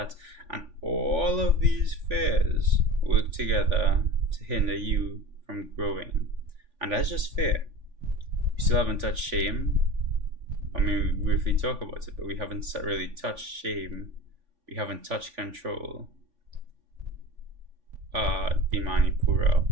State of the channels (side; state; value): left; late; 3.5 ms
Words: and all of these fears work together to hinder you from growing. And that's just fear. We still haven't touched shame. I mean, we briefly talk about it, but we haven't really touched shame. We haven't touched control. The Manipura.